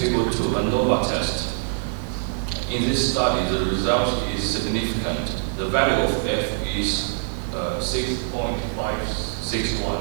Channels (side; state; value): left; silent; digital silence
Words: 2, a ANOVA test, In this study, the result is significant. The value of F is